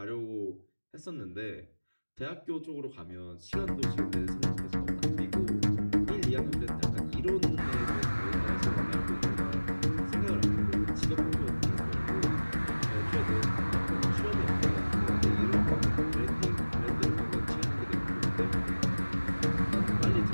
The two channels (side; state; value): both; inverted; correlation -1.00